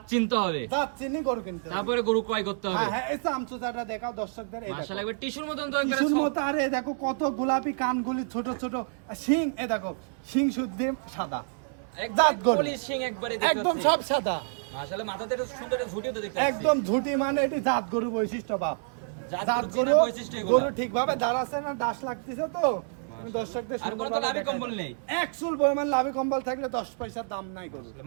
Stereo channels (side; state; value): left; silent; 59 dB below the other